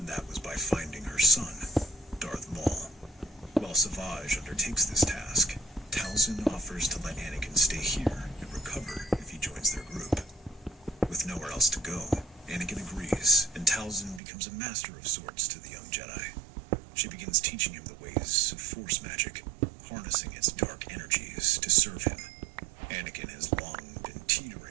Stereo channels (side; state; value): left; drops out; at 14.2 s